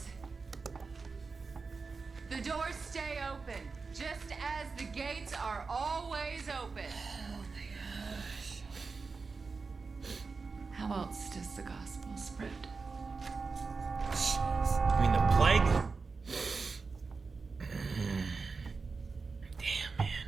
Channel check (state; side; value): quieter; left; 4.5 dB